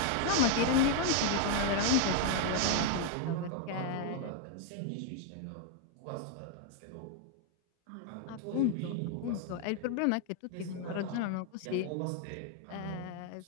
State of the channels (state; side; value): different; both; correlation 0.00